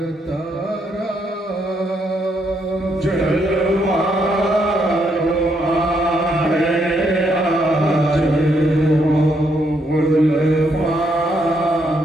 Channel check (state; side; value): normal; both; correlation 0.75